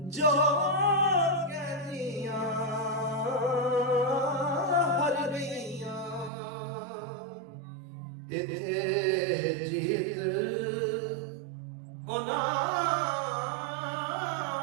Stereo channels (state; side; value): drops out; left; at 6.3 s